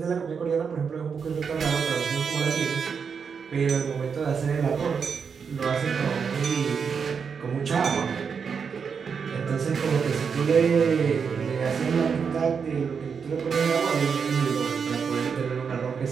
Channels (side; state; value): left; quieter; 6.2 dB